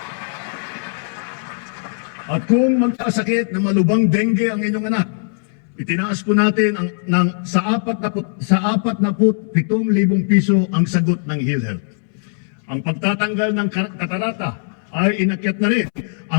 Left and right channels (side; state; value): right; silent; 66 dB below the other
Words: At kung magkasakit na malubang dengue ang inyong anak, itinaas po natin sa 47,000 piso ang sagot ng PhilHealth. Ang pagtatanggal ng katarata ay inakyat na rin